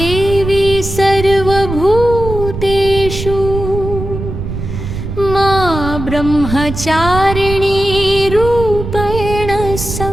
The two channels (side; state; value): right; noise; rumble, 7 dB below the sound